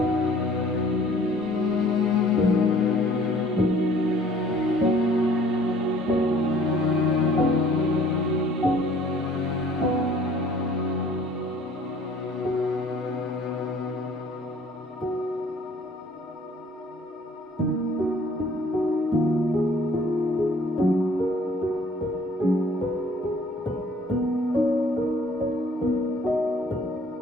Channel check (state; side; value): normal; both; correlation 0.55